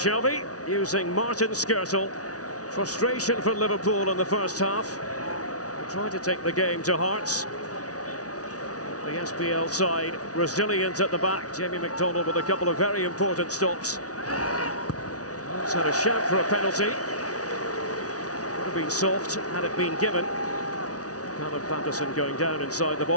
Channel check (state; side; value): late; right; 0.68 ms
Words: using Martin Skirtle. Frustration for Liverpool in the first half. They tried to take the game to Hearts. The SPL side resilient at the back. Jamie McDonald with a couple of very important stops. Hearts had a shout for a penalty. Would have been soft had it been given. Callum Patterson going down inside the